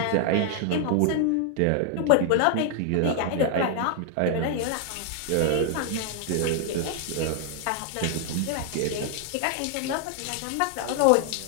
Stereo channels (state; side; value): different; both; correlation 0.00